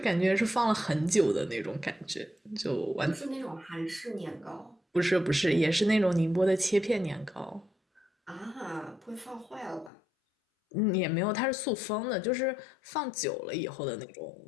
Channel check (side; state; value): right; drops out; at 9.9 s